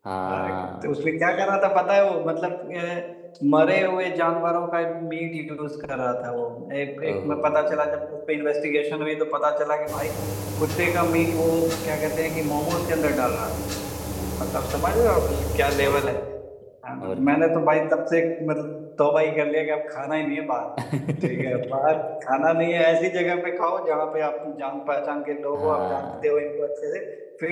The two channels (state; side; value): identical; both; correlation 1.00